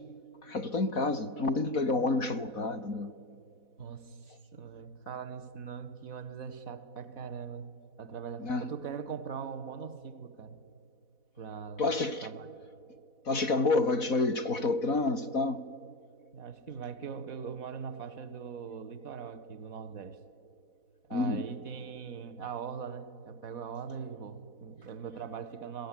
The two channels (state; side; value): late; right; 4.1 ms